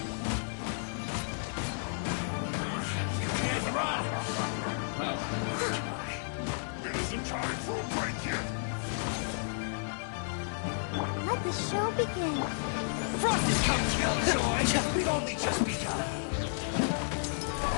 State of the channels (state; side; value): silent; right; 56 dB below the other